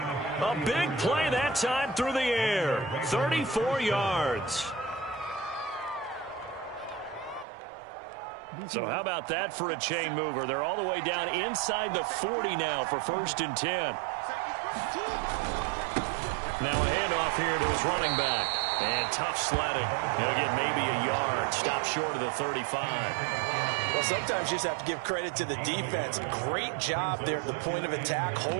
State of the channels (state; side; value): drops out; left; at 7.5 s